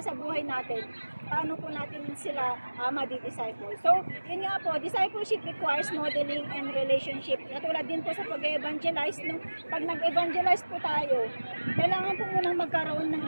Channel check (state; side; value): inverted; both; correlation -1.00